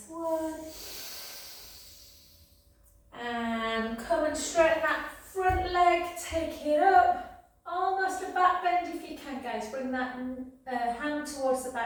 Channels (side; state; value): both; identical; correlation 1.00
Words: one, and come and straighten that front leg, take it up, almost a back bend if you can, guys. Bring that hand towards the